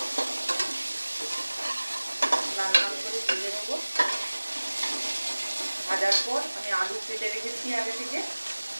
লাল লাল করে ভেজে নেবো। ভাজার পর আমি আলু কেটে রেখেছি আগে থেকে,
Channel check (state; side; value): inverted; both; correlation -1.00